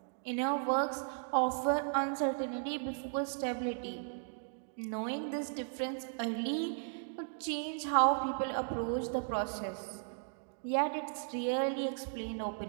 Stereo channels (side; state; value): left; silent; digital silence